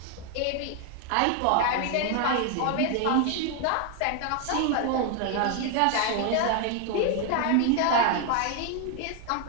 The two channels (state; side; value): different; both; correlation 0.01